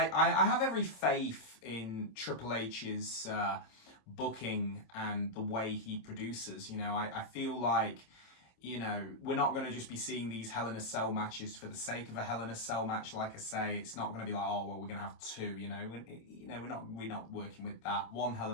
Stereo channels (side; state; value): right; late; 26 ms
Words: have every faith in Triple H's booking and the way he produces. I feel like, we're not going to just be seeing these Hell in a Cell matches for the sake of a Hell in a Cell match. Like I say, it's not going to be like, oh, well, we're going to have two, we're not working with that. One Hell